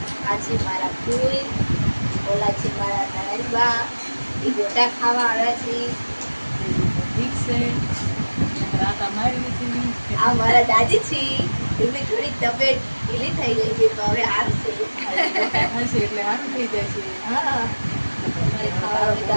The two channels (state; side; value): inverted; both; correlation -1.00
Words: આ છે મારા ફૂઈ, ઓલા છે મારા નણંદબા, એ ગોટા ખાવા આવ્યા છે। ઠીક છે, આ મારા દાદી છે, એમની થોડી તબિયત ઢીલી થઈ ગઈ છે તો હવે હારશે એટલે સારું થઈ જશે। હા, તમારે ખાવા હોય તો